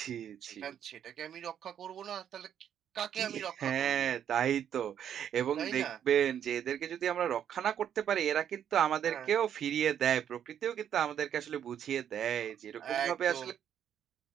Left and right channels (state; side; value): quieter; left; 9.3 dB